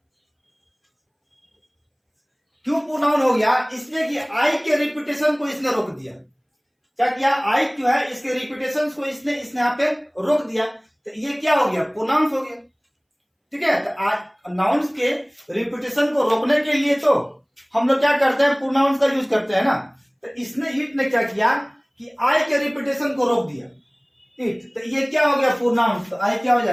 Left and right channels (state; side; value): identical; both; correlation 1.00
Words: क्यों प्रोनाउन हो गया? इसलिए कि आई के रिपीटेशन को इसने रोक दिया। क्या किया? आई जो है इसके रिपीटेशन को इसने यहाँ पे रोक दिया, तो ये क्या हो गया? प्रोनाउन हो गया। ठीक है, तो नाउन्स के रिपीटेशन को रोकने के लिए तो हम लोग क्या करते हैं? प्रोनाउंस का यूज करते हैं ना। तो इसने इट ने क्या किया कि आई के रिपीटेशन को रोक दिया, इट, तो ये क्या हो गया? प्रोनाउंस। तो आई क्या हो